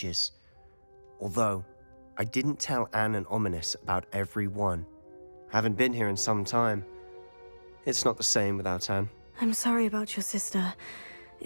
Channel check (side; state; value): both; inverted; correlation -1.00